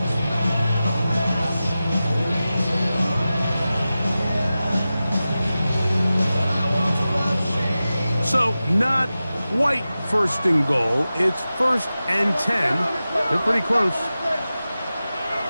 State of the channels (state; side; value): inverted; both; correlation -0.94